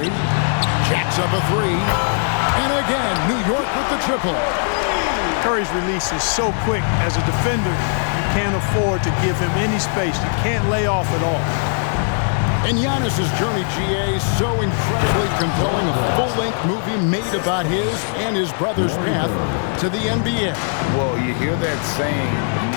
Jacks up a 3. And again, New York with the triple. Curry's release is so quick. As a defender, you can't afford to give him any space. You can't lay off at all. And Giannis's journey, GA, so incredibly compelling. A full-length movie made about his and his brother's path to the NBA. Well, you hear that saying,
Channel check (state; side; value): silent; right; 61 dB below the other